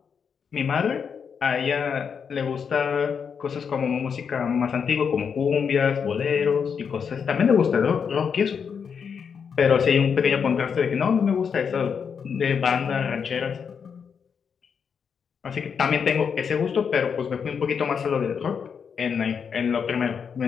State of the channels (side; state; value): right; quieter; 6.6 dB